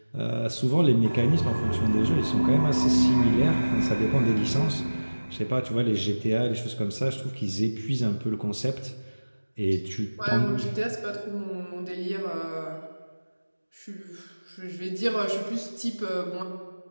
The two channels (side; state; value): both; inverted; correlation -1.00